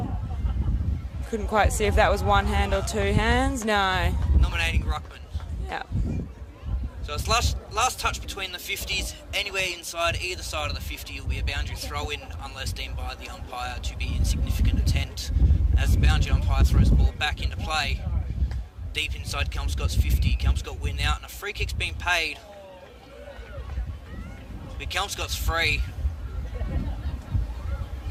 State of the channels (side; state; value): both; identical; correlation 1.00